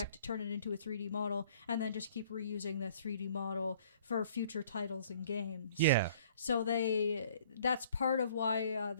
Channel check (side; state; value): both; inverted; correlation -0.56